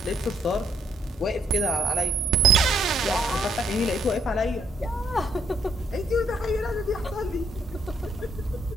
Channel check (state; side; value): normal; both; correlation 0.70